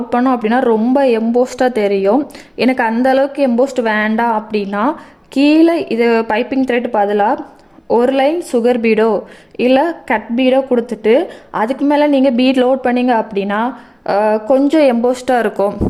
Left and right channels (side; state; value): both; identical; correlation 1.00